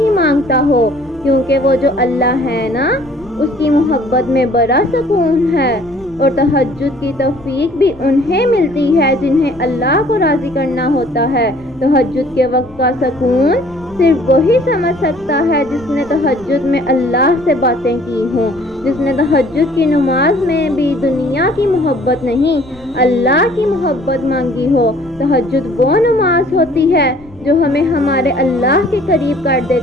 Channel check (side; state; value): left; noise; rumble, 23 dB below the sound